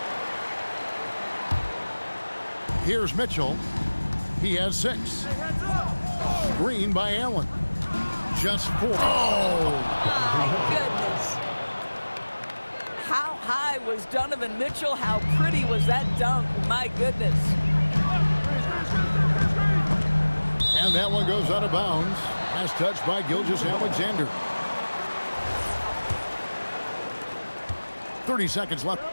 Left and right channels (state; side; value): inverted; both; correlation -1.00